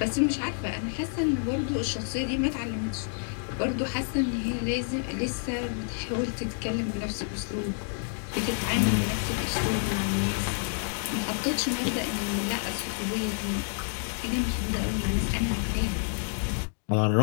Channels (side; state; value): right; silent; 59 dB below the other